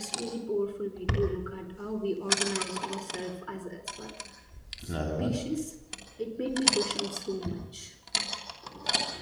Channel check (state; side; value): identical; both; correlation 1.00